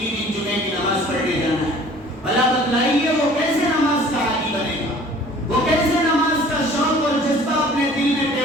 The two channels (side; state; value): both; normal; correlation 0.50